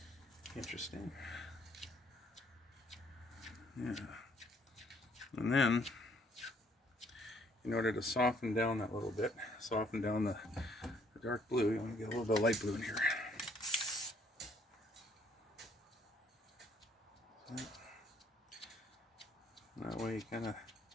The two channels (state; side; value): normal; both; correlation 0.65